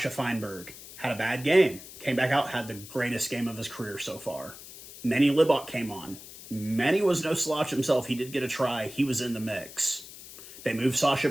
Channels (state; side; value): noise; left; hiss, 16 dB below the sound